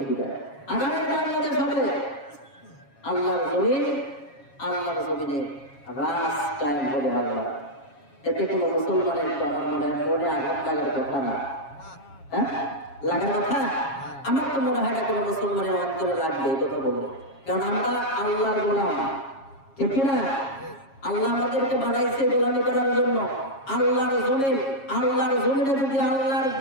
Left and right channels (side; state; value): right; late; 7.3 ms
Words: কি? আগামীর বাংলাদেশ হবে আল্লাহর জমিন, আল্লাহর জমিনে রাজ কায়েম হবে আল্লাহ। এতে কোনো মুসলমানের মনে আঘাত লাগার কথা না, হ্যাঁ লাগার কথা। আমার তো মনে হয় না কোনো মুসলমানের অন্তরে লাগবে এই কথা বলবো, কারণ আমরা আল্লাহর গোলাম, ঠিক না? আল্লাহ আমাদেরকে বানাইছে গোলামি করার জন্য। আল্লাহর জমিন, আল্লাহর জমিনে যদি আল্লাহর